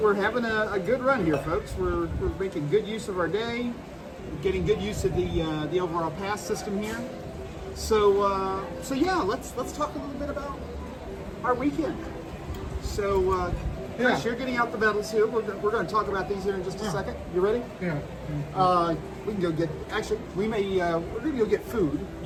having a good run here, folks. We're making good use of our day, getting good use of the overall pass system here. So yeah, let's talk a little bit about our weekend. So Chris, you're getting out the medals here. We're going to talk about these here in just a second. You ready? Yeah. We can go get. Actually, we're going to go get food.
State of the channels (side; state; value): both; identical; correlation 1.00